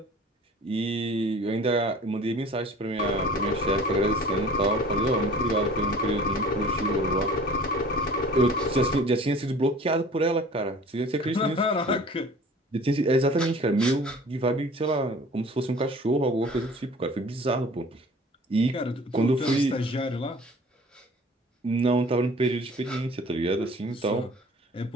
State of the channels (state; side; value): normal; both; correlation 0.46